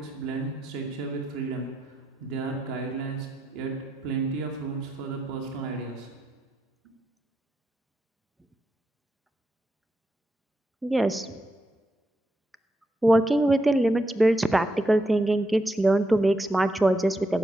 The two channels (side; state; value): both; normal; correlation 0.83